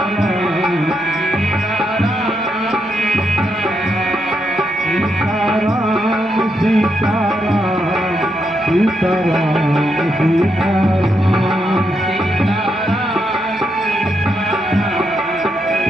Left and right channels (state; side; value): normal; both; correlation 0.81